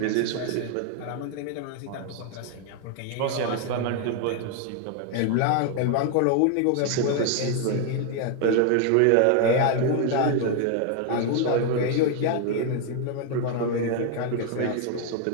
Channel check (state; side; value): different; both; correlation 0.01